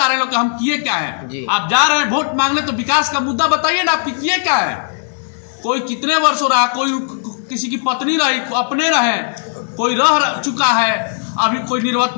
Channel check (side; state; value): right; silent; 68 dB below the other